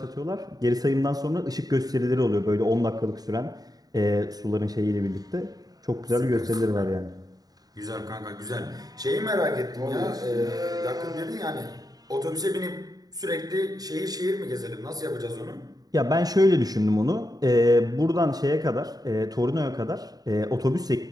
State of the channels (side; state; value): left; late; 0.18 ms